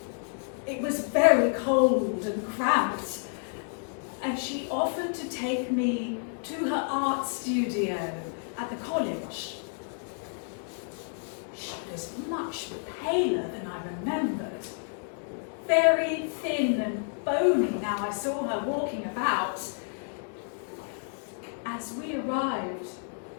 It was very cold and cramped, and she offered to take me to her art studio at the college. She was much paler than I remembered, very thin and bony now I saw her walking about. As we arrived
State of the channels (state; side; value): silent; right; 57 dB below the other